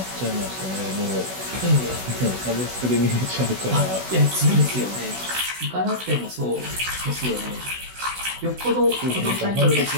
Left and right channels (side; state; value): left; late; 16 ms